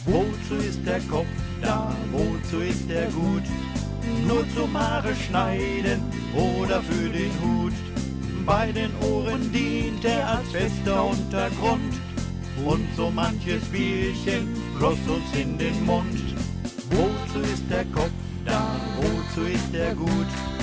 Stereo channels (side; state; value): both; identical; correlation 1.00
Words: Wozu ist der Kopf da, wozu ist er gut? Nur zum Haare schneiden oder für den Hut. Bei den Ohren dient er als fester Untergrund. Und so manches Bierchen floss uns in den Mund. Wozu ist der Kopf da, wozu ist er gut?